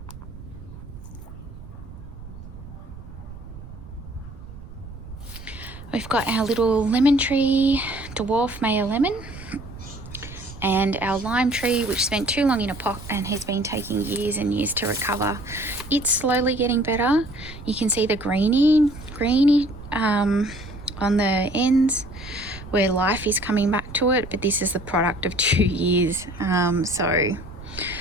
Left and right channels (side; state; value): right; noise; rumble, 14 dB below the sound